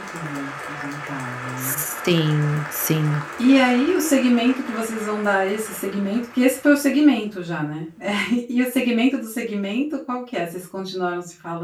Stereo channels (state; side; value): identical; both; correlation 1.00